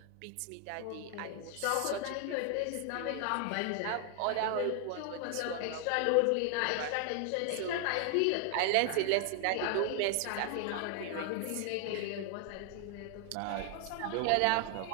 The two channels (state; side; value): different; both; correlation 0.00